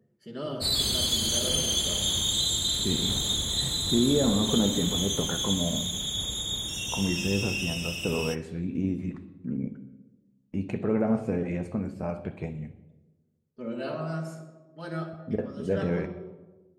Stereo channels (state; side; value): identical; both; correlation 1.00